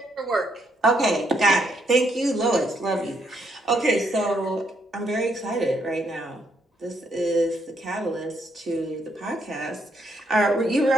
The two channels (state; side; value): normal; both; correlation 0.74